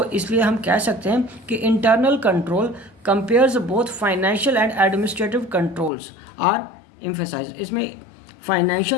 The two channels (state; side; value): drops out; right; at 5.9 s